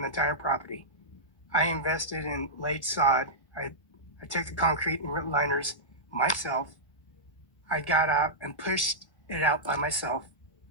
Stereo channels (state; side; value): late; right; 1.2 ms